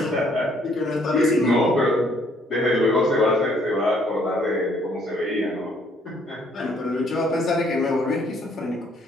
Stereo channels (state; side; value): normal; both; correlation 0.65